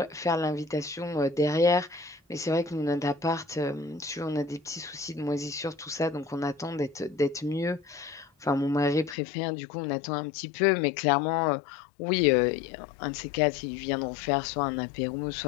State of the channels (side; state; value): right; drops out; at 9.2 s